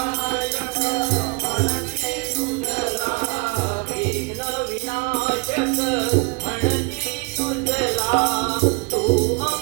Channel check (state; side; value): quieter; left; 28.9 dB